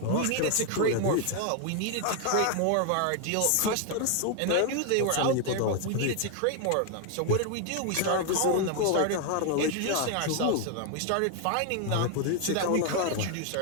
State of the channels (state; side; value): different; both; correlation 0.00